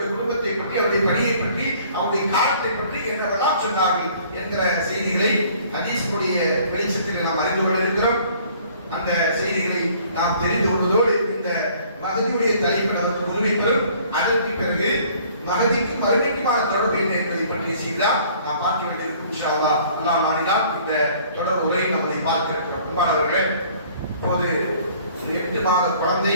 குடும்பத்தை பற்றி, அவருடைய பணியை பற்றி, அவருடைய காலத்தை பற்றி என்னவெல்லாம் சொன்னார்கள் என்கிற செய்திகளை ஹதீஸுடைய வெளிச்சத்தில் நாம் அறிந்து கொள்ள இருக்கிறோம். அந்த செய்திகளை நாம் தெரிந்து கொள்வதோடு இந்த மகதியுடைய தலைப்பில் அவருக்கு முன்வைப்பதும், அதற்கு பிறகு மகதிக்கு மறுமைக்குமான தொடர்பு என்ன என்பதை பற்றிய செய்திதான் நாம் பார்க்க வேண்டியிருக்கும். இன்ஷா அல்லாஹ் அல்லாஹ் நாடினால் இந்த தொடர் உரை நம்மளை பார்க்க இருக்கிறோம். அன்பானவர்களே, இப்போது 8 மாத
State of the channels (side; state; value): both; inverted; correlation -0.56